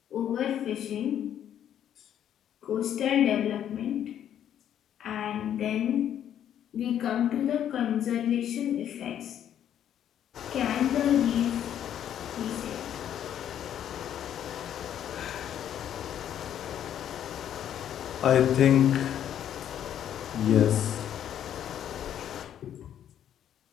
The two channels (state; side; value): quieter; right; 10.2 dB